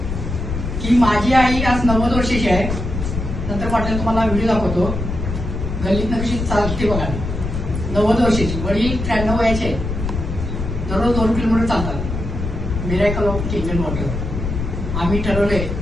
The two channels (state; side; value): noise; left; rumble, 4 dB below the sound